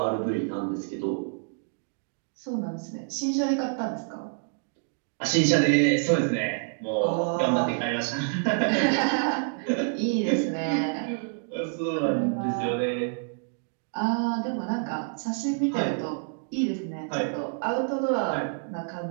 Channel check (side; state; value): left; silent; 60 dB below the other